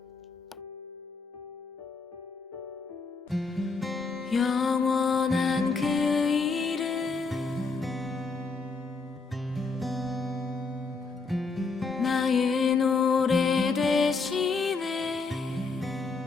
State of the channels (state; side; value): quieter; right; 4.3 dB